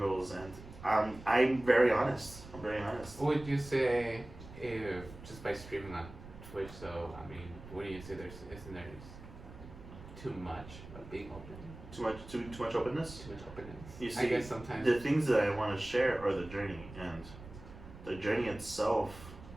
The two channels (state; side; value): noise; right; rumble, 16 dB below the sound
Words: and I'm very honest. I'm very honest. Would you say if just by streaming on Twitch, so I mean, what do you say? Isn't there too much of being open? Too much openness. Too much openness. You see, I guess sometimes the things that I want to share are the journey, and the journey itself